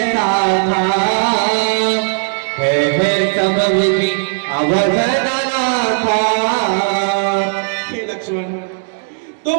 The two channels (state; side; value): silent; left; digital silence